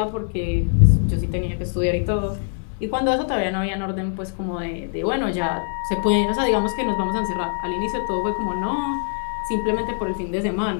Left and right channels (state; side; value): silent; right; 63 dB below the other